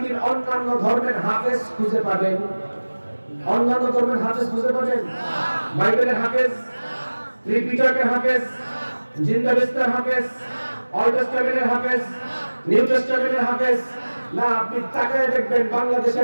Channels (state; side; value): inverted; both; correlation -1.00